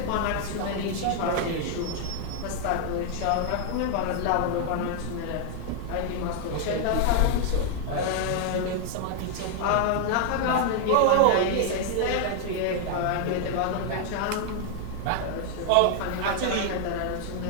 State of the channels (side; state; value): both; different; correlation 0.00